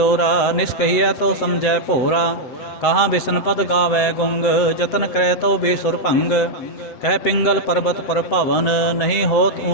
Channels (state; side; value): late; right; 7.9 ms